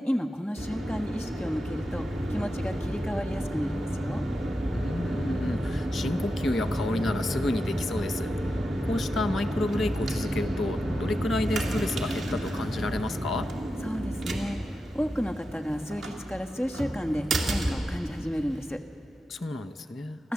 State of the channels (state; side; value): normal; both; correlation 0.89